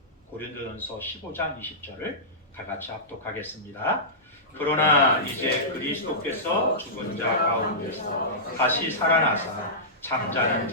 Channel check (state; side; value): normal; both; correlation -0.18